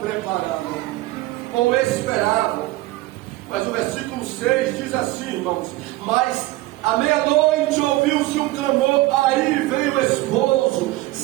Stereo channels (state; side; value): quieter; left; 18.6 dB